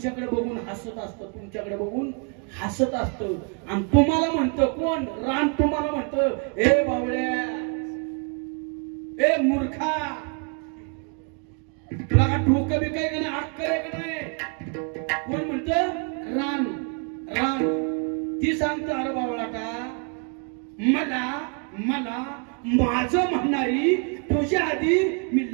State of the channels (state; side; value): quieter; left; 37.3 dB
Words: बघून हसत असतं, तुमच्याकडे बघून हसत असतं. आणि तुम्हाला म्हणतं कोण? रान तुम्हाला म्हणतं, ए बावळ्या, ए मूर्खा, तुला का डोकं बी काय का नाही, अक्कल आहे का नाही? कोण म्हणतं? रान. रान ती सांगतं, अरे बावळाटा, मला माझं म्हणणारी तुझ्या आधी मी